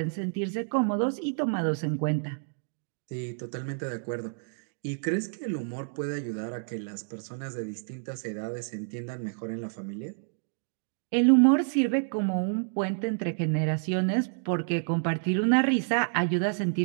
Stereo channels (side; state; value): left; silent; digital silence